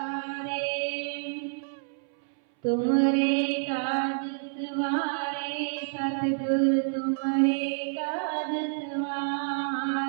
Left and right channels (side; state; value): left; silent; 59 dB below the other